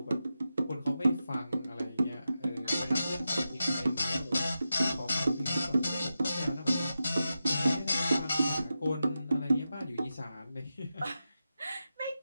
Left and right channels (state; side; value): inverted; both; correlation -0.90